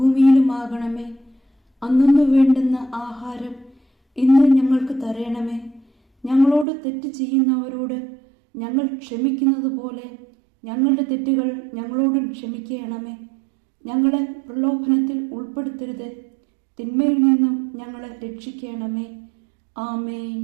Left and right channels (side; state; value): left; drops out; at 6.7 s